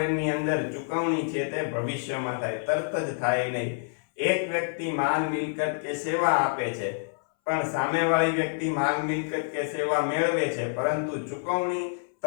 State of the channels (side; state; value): right; silent; 60 dB below the other